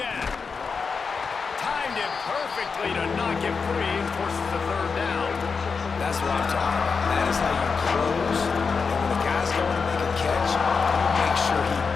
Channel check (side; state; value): right; quieter; 5.2 dB